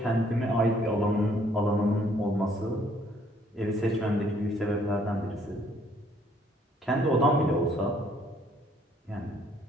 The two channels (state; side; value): normal; both; correlation 0.64